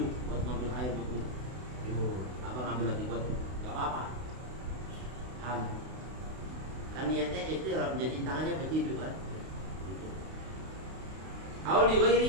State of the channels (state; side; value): late; left; 32 ms